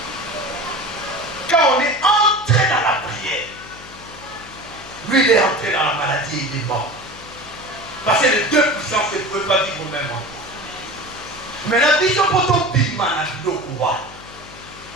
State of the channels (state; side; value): noise; left; hum, 19 dB below the sound